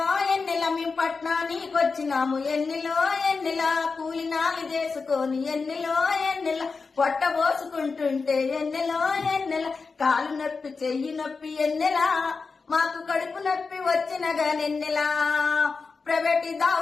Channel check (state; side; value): quieter; right; 4.6 dB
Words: ఎన్నిల మేము పట్నానికి వచ్చినాము, ఎన్నిలో ఎన్నిల కూలినాలు చేసుకొని, ఎన్నిలో ఎన్నిల పొట్ట పోసుకుంటుంటే, ఎన్నిలో ఎన్నిల కాలు నొప్పి చెయ్యి నొప్పి, ఎన్నెలా మాకు కడుపు నొప్పి వచ్చిన గానెన్నెలా ప్రైవేట్